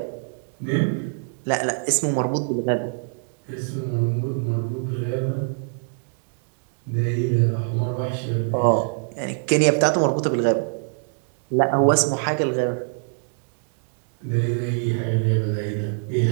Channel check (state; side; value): silent; left; 63 dB below the other